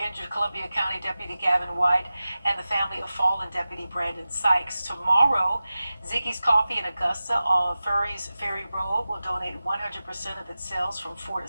Columbia County Deputy Gavin White and the family of fallen Deputy Brandon Sykes. Tomorrow, Ziggy's Coffee in Augusta on Furry's Ferry Road will donate 100% of its sales from 4 to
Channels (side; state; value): both; inverted; correlation -0.95